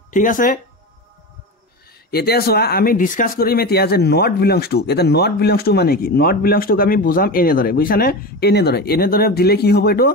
ঠিক আছে এতিয়া চোৱা আমি ডিসকাস কৰিম এতিয়া যে নট বিলংস টু এটা নট বিলংস টু মানে কি নট বিলংস টু আমি বুজাম এনেদৰে বুজিছানে এনেদৰে দিলে কি হ'ব এটো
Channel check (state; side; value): normal; both; correlation 0.24